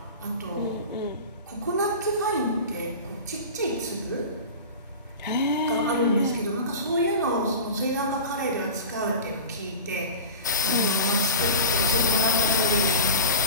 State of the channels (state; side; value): inverted; both; correlation -0.33